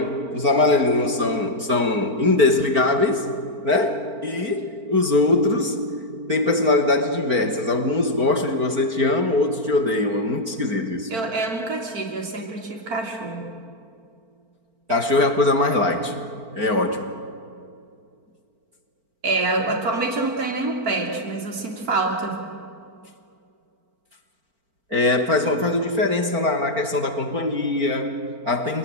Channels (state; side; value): late; left; 4.4 ms